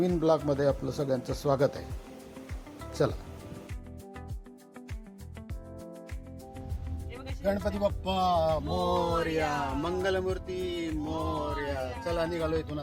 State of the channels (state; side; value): identical; both; correlation 1.00